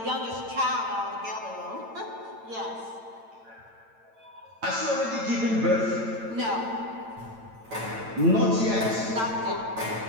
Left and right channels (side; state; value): left; late; 8.9 ms